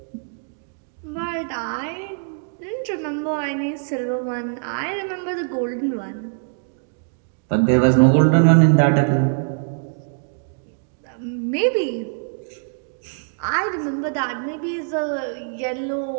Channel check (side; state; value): left; silent; digital silence